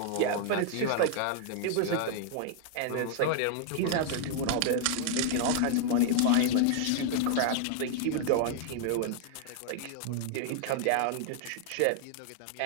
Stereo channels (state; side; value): different; both; correlation 0.00